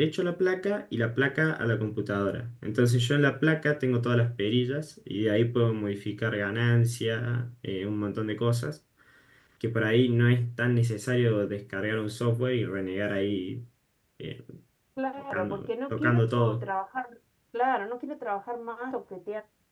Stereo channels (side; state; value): both; identical; correlation 1.00